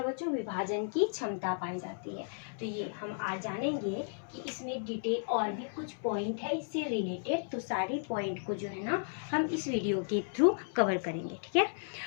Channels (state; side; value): silent; right; 55 dB below the other